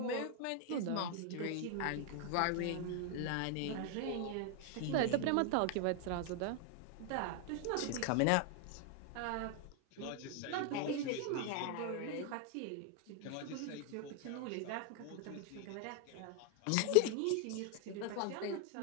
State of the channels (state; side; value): different; both; correlation 0.00